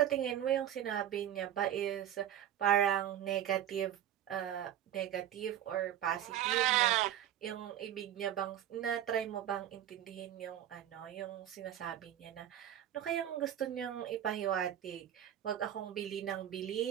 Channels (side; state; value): left; quieter; 11.0 dB